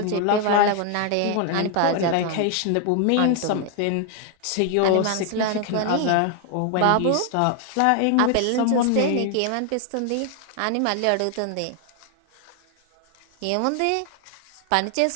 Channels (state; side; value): different; both; correlation 0.00